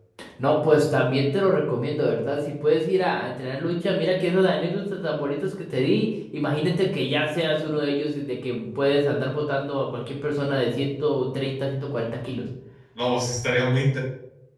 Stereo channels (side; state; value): both; identical; correlation 1.00